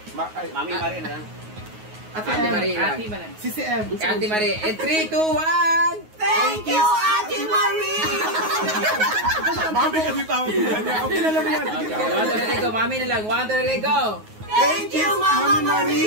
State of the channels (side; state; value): left; late; 9.4 ms